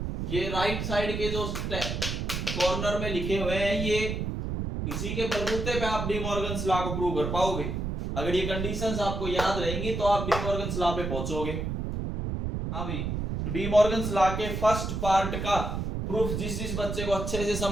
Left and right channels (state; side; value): noise; right; rumble, 3 dB below the sound